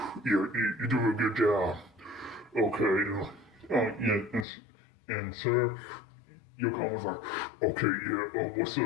you're doing a good job. Okay, yeah, and sir, Yoko was like, okay, yeah, what's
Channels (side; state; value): right; drops out; at 4.5 s